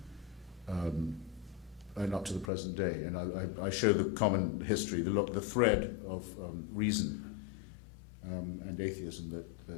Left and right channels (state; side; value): drops out; right; at 2.5 s